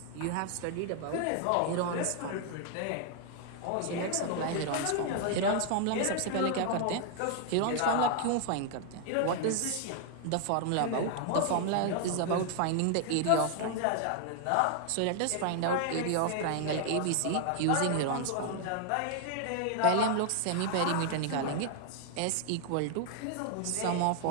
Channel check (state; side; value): different; both; correlation 0.00